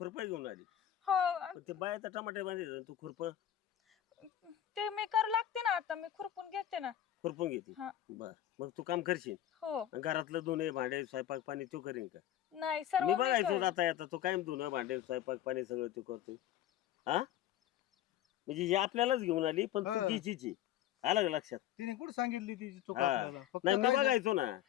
घेऊन आली. हो, पण ते बायाचा टमाटे बांधले तू खुरप ते मी करू लागते ना. आता मी खुरपून घेते ना. खुरपून घेते. हा. बर, मग तू काम करशील. हो, घरातलं धुणे भांडे स्वयंपाक पाणी तू करीन का? नाही सर्व मी मी बघायचो करेन. जाता येता तू कायम धुणं भांडे स्वयंपाक पाणी सगळं तू करतोय. हा, म्हणजे हे आपल्यालाच घेऊन आली पण हा. तू तिचीची. आलं का लक्षात? तिने कुठं सांगितली तिची चूक हा. आपल्याला? फक्त नाही मी काय झालं? बघायचो ना.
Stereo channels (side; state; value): right; quieter; 11.6 dB